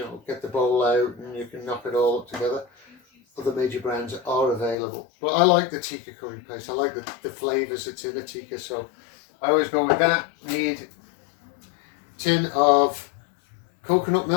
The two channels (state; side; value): drops out; right; at 4.8 s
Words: get the bowl out and you can knock it all up together. Other major brands are available. But I like the tikka curry paste. I like the flavours that's in a tikka. So I always go with that. Need a tin of coconut